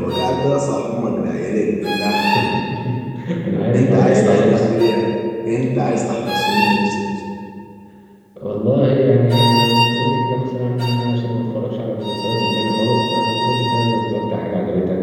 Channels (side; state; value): both; identical; correlation 1.00